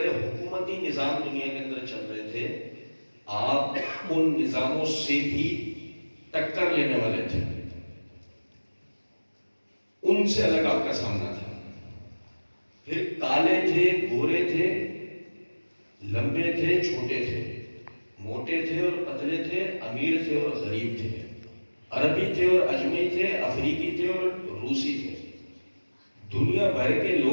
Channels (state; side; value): inverted; both; correlation -1.00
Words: حکومتی نظام دنیا کے اندر چل رہے تھے. آپ ان نظاموں سے بھی ٹکر لینے والے تھے، ان سے الگ آپ کا سامنا تھا. پھر کالے تھے، گورے تھے، لمبے تھے، چھوٹے تھے، موٹے تھے اور پتلے تھے، امیر تھے اور غریب تھے، عربی تھے اور اجمی تھے، افریقی تھے اور روسی تھے. دنیا بھر کے